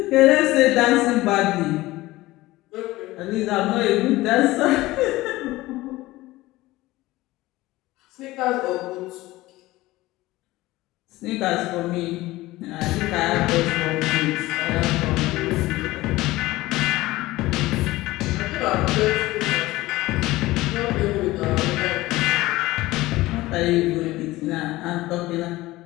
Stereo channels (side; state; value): right; quieter; 18.4 dB